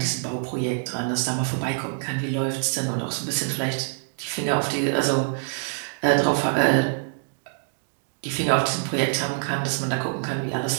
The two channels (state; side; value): silent; left; digital silence